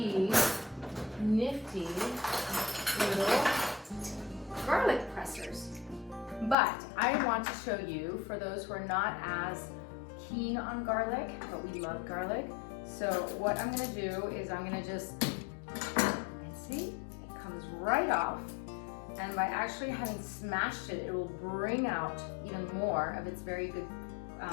nifty little garlic pressers. But I want to show you, for those who are not as keen on garlic, but we love garlic, so what I'm gonna do is I'm gonna just, see, it comes right off, and by actually having smashed it, it will bring out even more of its very good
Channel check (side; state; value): right; drops out; at 6.6 s